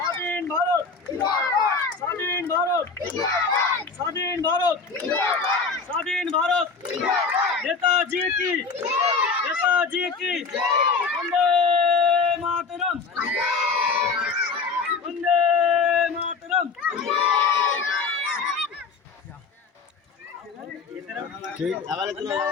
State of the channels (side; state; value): right; quieter; 4.8 dB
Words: ভারত, স্বাধীন ভারত, স্বাধীন ভারত, স্বাধীন ভারত। নেতাজি কি, নেতাজি কি, বন্দে মাতরম, বন্দে মাতরম। ঠিক লাভালে বন্দে